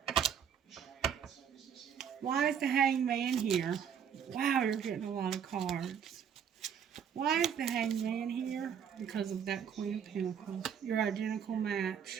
Why is the hangman here? Wow, you're getting a lot of cards. Why is the hangman here? Because of that Queen of Pentacles. Your identical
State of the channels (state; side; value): quieter; left; 7.9 dB